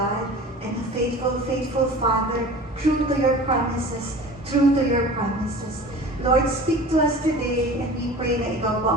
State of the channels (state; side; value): normal; both; correlation 0.40